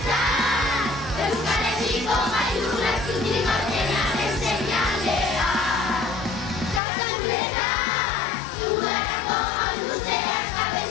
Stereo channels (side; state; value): right; drops out; at 6.8 s